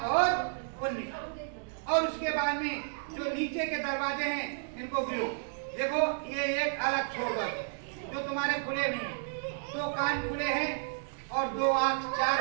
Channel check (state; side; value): silent; left; digital silence